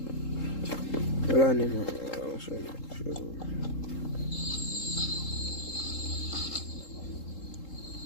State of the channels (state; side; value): late; right; 3.8 ms